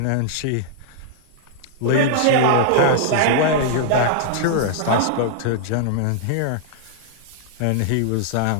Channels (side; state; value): both; different; correlation -0.01